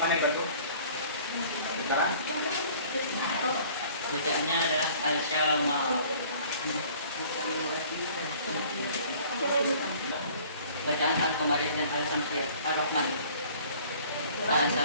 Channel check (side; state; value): both; inverted; correlation -0.51